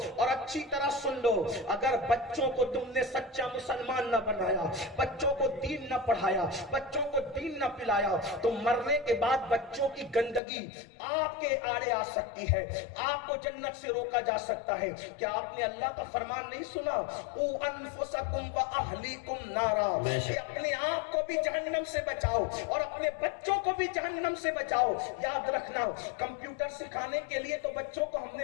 اور اچھی طرح سن لو، اگر بچوں کو تم نے سچا مسلمان نہ بنایا، بچوں کو دین نہ پڑھایا، بچوں کو دین نہ پلایا، تو مرنے کے بعد بچوں کی گندگی آپ کے آڑے آ سکتی ہے، آپ کو جنت سے روکا جا سکتا ہے۔ کیا آپ نے اللہ کا فرمان نہیں سنا؟ او انفسکم و اہلیکم نارا، کہ اپنے آپ کو بھی جہنم سے بچاؤ اور اپنے بچوں کو بھی جہنم سے بچاؤ۔ یاد رکھنا، کمپیوٹر سکھانے کے لیے تو بچوں کو ہم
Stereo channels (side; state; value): right; drops out; at 10.4 s